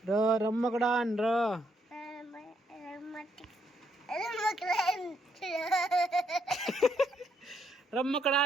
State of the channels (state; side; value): normal; both; correlation 0.75